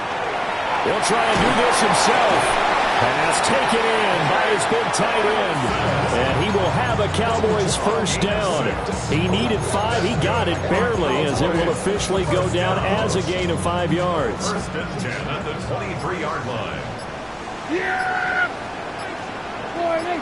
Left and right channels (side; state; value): both; identical; correlation 1.00